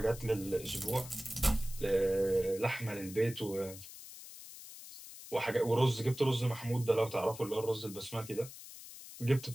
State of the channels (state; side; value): noise; left; hiss, 14 dB below the sound